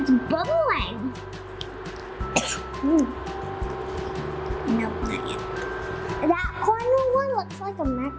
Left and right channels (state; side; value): identical; both; correlation 1.00